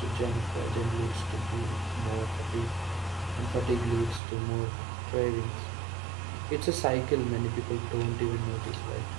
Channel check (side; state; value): left; drops out; at 4.2 s